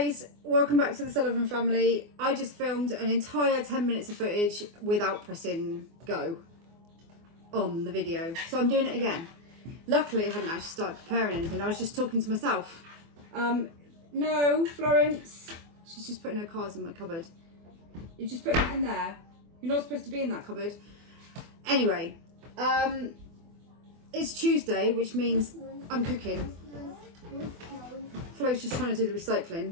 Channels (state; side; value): late; left; 24 ms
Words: Welcome back to the Sullivan family. I just filmed an entire 10 minutes of footage without pressing go on the video, so I'm doing it again. Luckily, I hadn't actually started preparing anything. I was just talking to myself. No, Florence. She's just putting her cards in my cupboard. You just put it in there. You're not supposed to be in that cupboard. Anyway, it's Tuesday, which means I'm cooking. Flo's just trying to do the